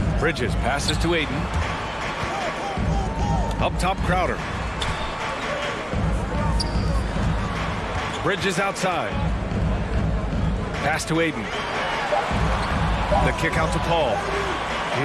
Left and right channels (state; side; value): identical; both; correlation 1.00